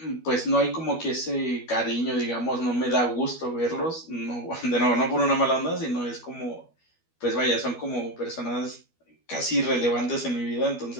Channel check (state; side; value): late; right; 12 ms